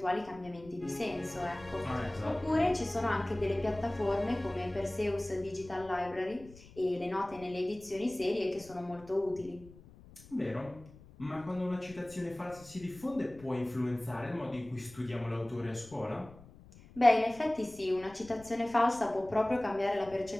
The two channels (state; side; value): noise; left; rumble, 21 dB below the sound